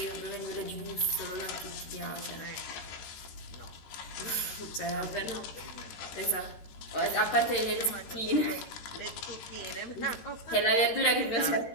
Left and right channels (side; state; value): right; late; 13 ms